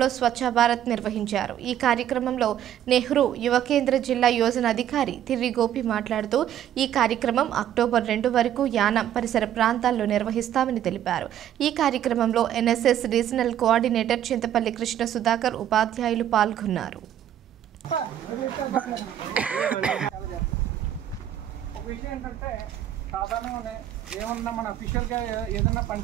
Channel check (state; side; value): quieter; left; 11.0 dB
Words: స్వచ్ఛ భారత్ నిర్వహించారు. ఈ కార్యక్రమంలో నెహ్రూ యువ కేంద్ర జిల్లా యోజన అధికారి తిర్రి గోపి మాట్లాడుతూ ఈ కార్యక్రమం అక్టోబర్ 2 వరకు యానం పరిసర ప్రాంతాల్లో నిర్వహిస్తామని తెలిపారు. ఈ కార్యక్రమంలో NSS regional coordinator Chintapalli Krishna Sudhakar, ఉపాధ్యాయులు పాల్గొన్నారు. సాధారణంగానే ఏమన్నా మన అఫీషియల్గా ఏదైనా పని